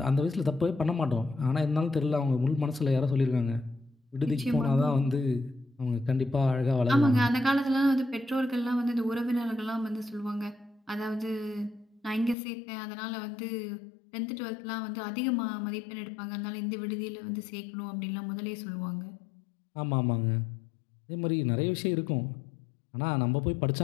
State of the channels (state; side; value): drops out; right; at 12.4 s